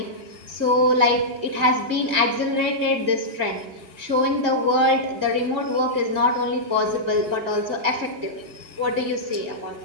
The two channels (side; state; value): left; late; 2.1 ms